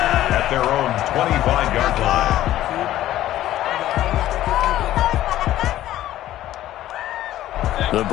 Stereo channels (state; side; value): quieter; right; 13.7 dB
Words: at their own 25-yard line. The